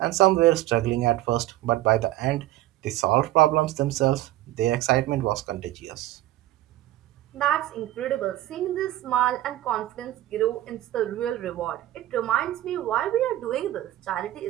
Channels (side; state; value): left; quieter; 15.1 dB